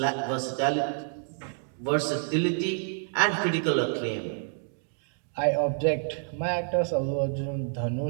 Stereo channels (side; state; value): left; silent; 59 dB below the other